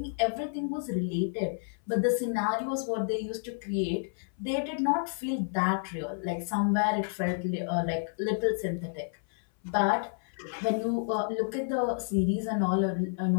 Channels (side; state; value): right; silent; 58 dB below the other